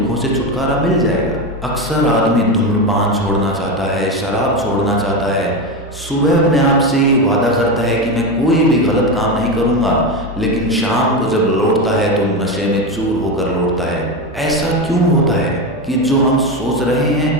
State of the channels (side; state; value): both; normal; correlation 0.16